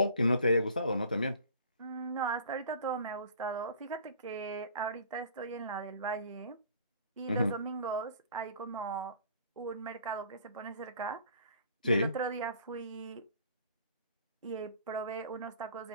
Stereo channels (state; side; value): inverted; both; correlation -0.50